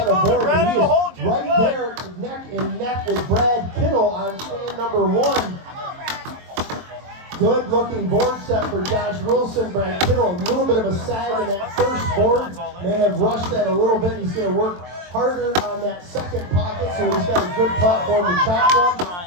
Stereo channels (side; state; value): left; late; 23 ms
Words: a board, but he is right there neck and neck with Brad Kittle on stand number 1. Good looking board set for Josh Wilson. Brad Kittle, a little bit of a sag in that first board. May have rushed that a little bit. He's going to work harder on that second pocket, so he's got a good platform to chop from.